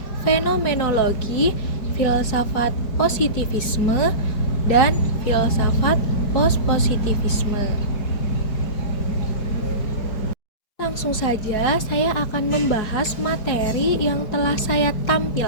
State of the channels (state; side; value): late; right; 4.7 ms